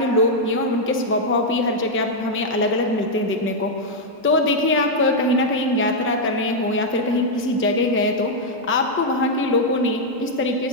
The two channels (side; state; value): both; normal; correlation -0.03